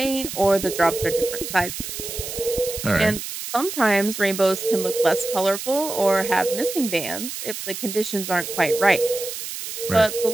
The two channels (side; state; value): right; noise; hiss, 7 dB below the sound